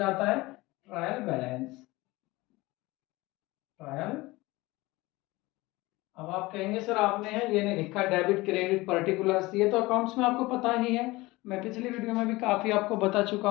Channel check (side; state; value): right; quieter; 20.9 dB